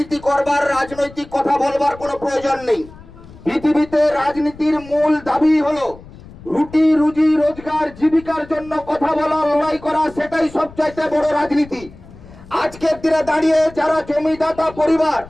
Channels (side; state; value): left; noise; rumble, 19 dB below the sound